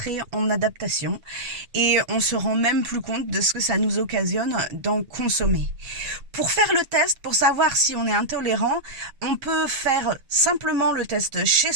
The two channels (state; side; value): late; left; 7.7 ms